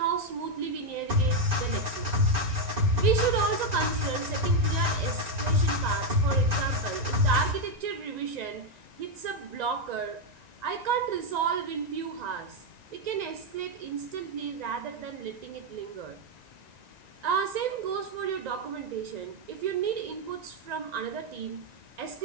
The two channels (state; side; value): late; left; 1.9 ms